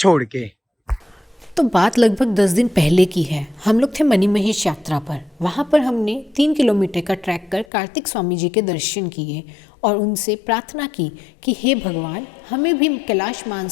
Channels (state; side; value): drops out; right; at 7.7 s